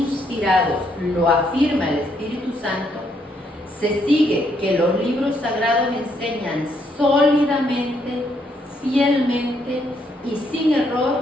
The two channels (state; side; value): normal; both; correlation 0.73